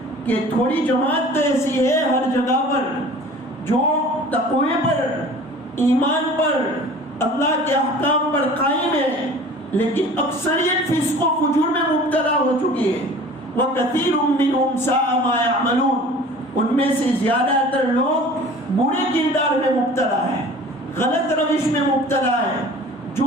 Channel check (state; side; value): normal; both; correlation 0.44